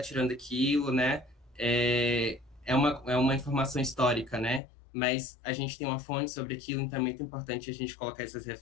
tirando aquilo, né? É uma informação histórica, né? Mas a gente tem uma fonte sobre aquilo, então é muito importante a gente colocar essas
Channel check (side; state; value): right; drops out; at 4.6 s